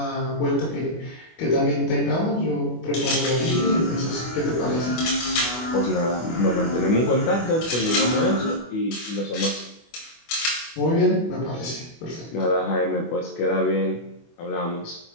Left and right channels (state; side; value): late; right; 24 ms